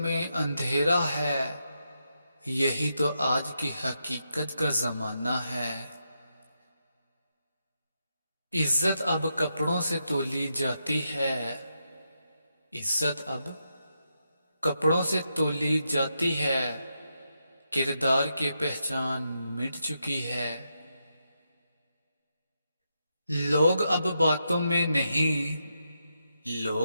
अंधेरा है। यही तो आज की हकीकत का जमाना है। इज्जत अब कपड़ों से तोली जाती है। इज्जत अब कपड़ों से तोली जाती है। किरदार की पहचान मिट चुकी है। लोग अब बातों में नहीं,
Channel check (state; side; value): inverted; both; correlation -0.84